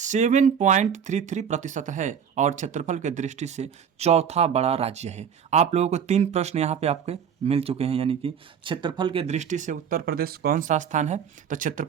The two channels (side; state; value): left; quieter; 7.7 dB